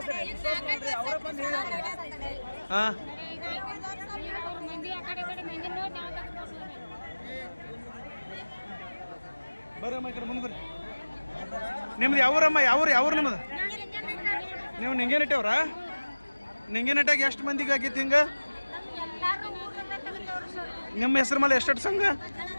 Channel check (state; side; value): inverted; both; correlation -1.00